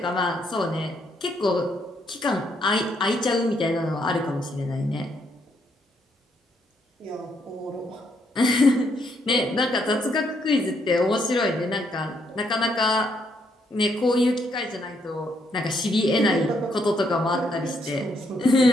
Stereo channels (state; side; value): normal; both; correlation 0.73